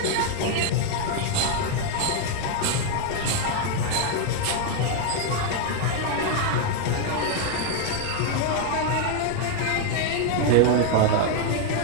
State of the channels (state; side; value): different; both; correlation 0.00